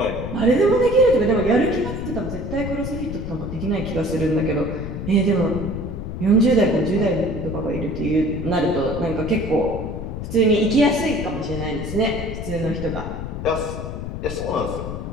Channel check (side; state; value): left; noise; rumble, 6 dB below the sound